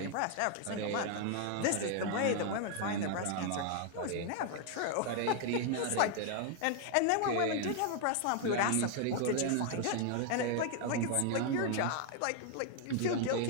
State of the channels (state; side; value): different; both; correlation 0.00